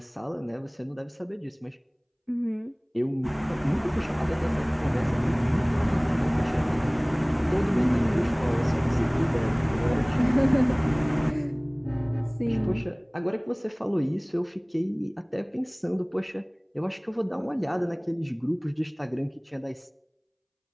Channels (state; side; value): identical; both; correlation 1.00